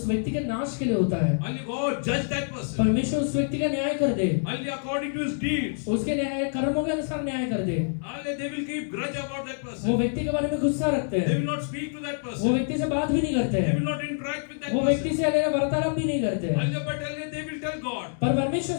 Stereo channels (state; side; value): silent; right; digital silence